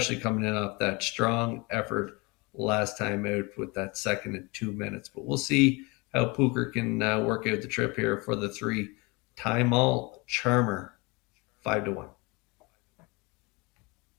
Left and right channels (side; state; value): right; quieter; 26.9 dB